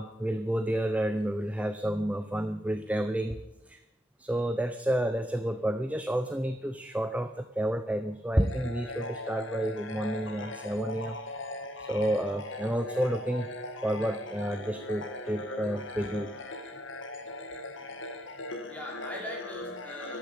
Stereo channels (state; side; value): normal; both; correlation 0.80